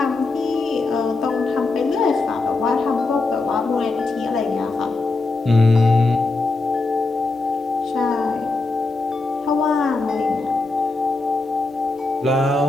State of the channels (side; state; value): right; quieter; 3.4 dB